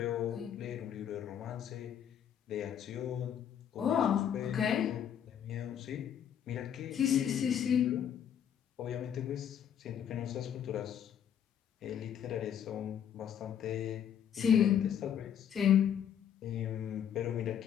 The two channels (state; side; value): quieter; right; 9.1 dB